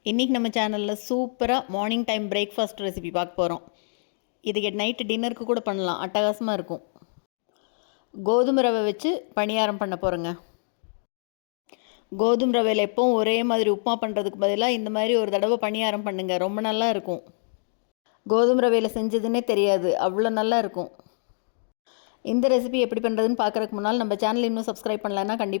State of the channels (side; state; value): right; silent; digital silence